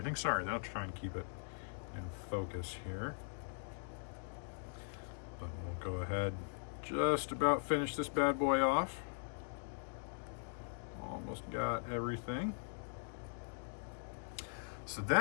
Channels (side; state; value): right; silent; digital silence